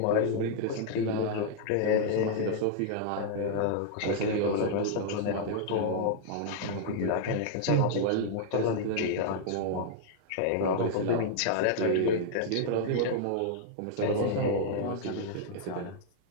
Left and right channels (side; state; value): both; different; correlation -0.01